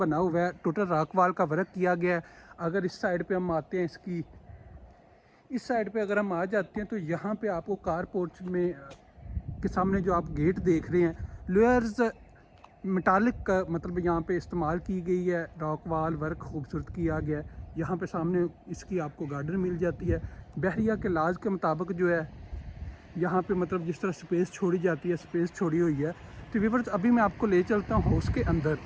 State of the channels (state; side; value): identical; both; correlation 1.00